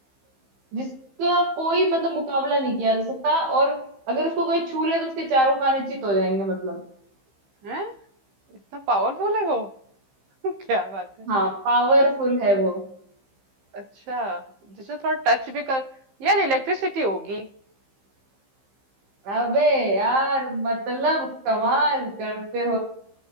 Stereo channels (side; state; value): left; late; 15 ms